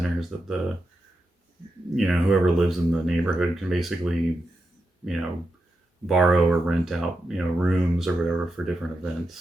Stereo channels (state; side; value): normal; both; correlation 0.87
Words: that the, you know, whoever lives in the neighborhood can basically, you know, borrow or rent out, you know, rooms or whatever for different events,